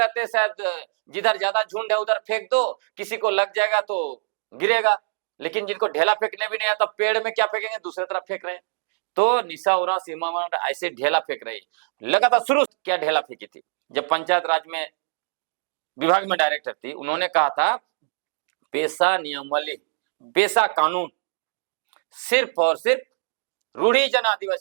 हैं। शायद जिधर ज्यादा झुंड है उधर फेंक दो, किसी को लग जाएगा तो गिरेगा। लेकिन जिनको ढेला फेंकने भी नहीं आता, पेड़ में क्या फेंकेंगे, दूसरे तरफ फेंक रहे हैं। तो निशा उरांव सीमा ऐसे ढेला फेंक रही लगातार। शुरू क्या ढेला फेंकी थी, जब पंचायत राज में विभाग में डायरेक्टर थी, उन्होंने कहा था पेशा नियमावली, पेशा कानून सिर्फ और सिर्फ रूढ़ी जन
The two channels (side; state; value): left; silent; digital silence